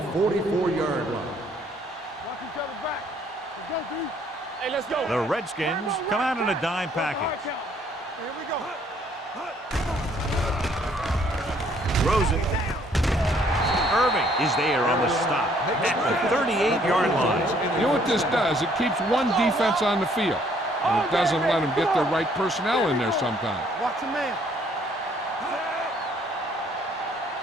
44-yard line. Watch each other back. Let's go, D. Hey, let's go. The Redskins come out in a dime package. Here we go. Throws it. Irving is there on the stop at the 38-yard line. You know what this does? It keeps one defense on the field, and it doesn't let them get the right personnel in there sometimes. Watch the man.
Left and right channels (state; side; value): normal; both; correlation 0.64